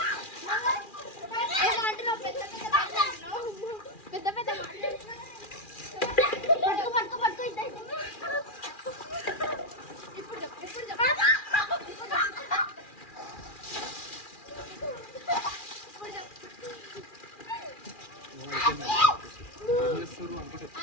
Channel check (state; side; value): late; right; 2.4 ms